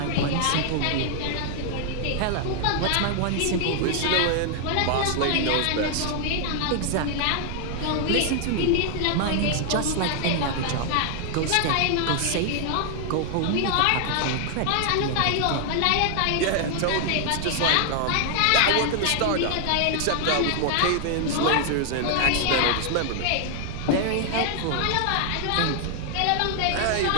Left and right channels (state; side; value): different; both; correlation 0.00